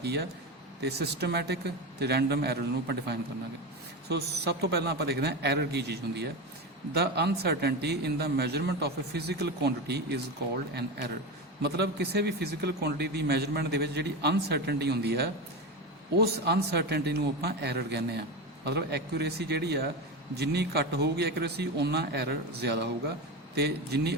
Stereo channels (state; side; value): normal; both; correlation 0.20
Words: ਆ ਤੇ ਸਿਸਟਮੈਟਿਕ ਤੇ ਰੈਂਡਮ ਐਰਰ ਨੂੰ ਆਪਾਂ ਡਿਫਾਈਨ ਕਰਾਂਗੇ। ਸੋ ਸਭ ਤੋਂ ਪਹਿਲਾਂ ਆਪਾਂ ਦੇਖਦੇ ਹਾਂ ਐਰਰ ਕੀ ਚੀਜ਼ ਹੁੰਦੀ ਹੈ। The uncertainty in the measurement of a physical quantity is called an error. ਮਤਲਬ ਕਿਸੇ ਵੀ ਫਿਜ਼ੀਕਲ ਕੁਆਂਟਿਟੀ ਦੀ ਮੈਜਰਮੈਂਟ ਦੇ ਵਿੱਚ ਜਿਹੜੀ ਅਨਸਰਟਨਟੀ ਹੁੰਦੀ ਹੈ ਉਸ ਅਨਸਰਟਨਟੀ ਨੂੰ ਆਪਾਂ ਐਰਰ ਕਹਿੰਦੇ ਆ। ਮਤਲਬ ਐਕੂਰੇਸੀ ਜਿਹੜੀ ਆ ਜਿੰਨੀ ਘੱਟ ਹੋਊਗੀ ਐਕੂਰੇਸੀ ਓਨਾ ਐਰਰ ਜ਼ਿਆਦਾ ਹੋਊਗਾ, ਤੇ ਜਿੰਨੀ